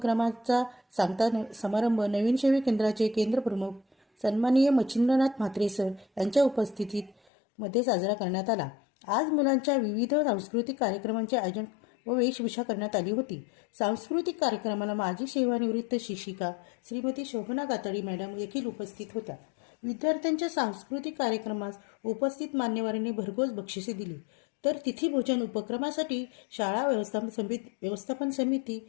सांगता समारंभ नवीन सेवा केंद्राचे केंद्र प्रमुख सन्माननीय मच्छिंद्रनाथ म्हात्रे सर यांच्या उपस्थितीत मध्ये साजरा करण्यात आला. आज मुलांच्या विविध सांस्कृतिक कार्यक्रमांचे आयोजन व वेशभूषा करण्यात आली होती. सांस्कृतिक कार्यक्रमाला माजी सेवानिवृत्त शिक्षिका श्रीमती शोभना गाताडी मॅडम देखील उपस्थित होत्या. विद्यार्थ्यांच्या सांस्कृतिक कार्यक्रमास उपस्थित मान्यवरांनी भरघोस बक्षिसे दिली. तर तिथी भोजन उपक्रमासाठी शाळा व्यवस्थापन समिती,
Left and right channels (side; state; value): right; drops out; at 7.2 s